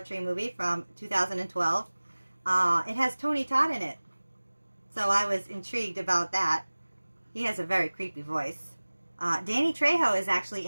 Tree movie from 2012. It has Tony Todd in it, so I was intrigued about that. He has a very creepy voice. Danny Trejo is actually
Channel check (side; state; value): both; inverted; correlation -1.00